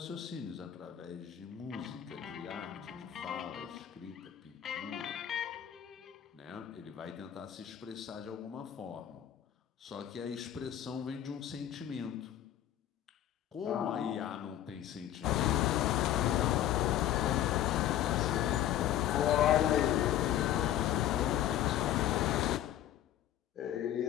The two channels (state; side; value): quieter; right; 11.7 dB